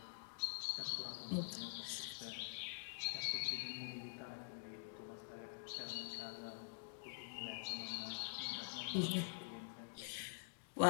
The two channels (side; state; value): right; silent; digital silence